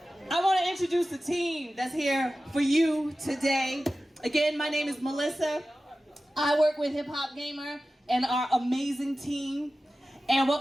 I want to introduce the team that's here for you today. Again, my name is Melissa. I work with hiphopgamer and our amazing team. And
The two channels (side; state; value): both; normal; correlation 0.95